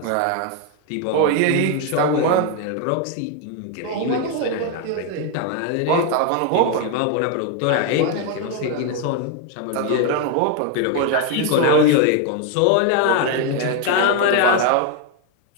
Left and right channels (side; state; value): both; different; correlation 0.01